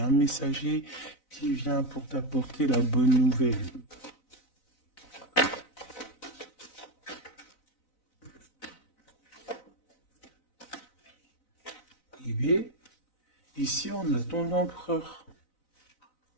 messager qui vient pour t'apporter la bonne nouvelle. arriver. Ici, on a ton empereur.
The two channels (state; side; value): late; right; 4.0 ms